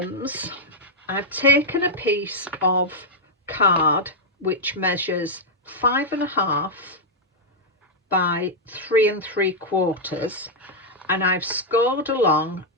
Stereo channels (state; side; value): normal; both; correlation -0.04